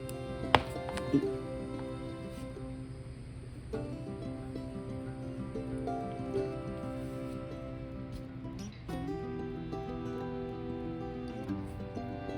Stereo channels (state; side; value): identical; both; correlation 1.00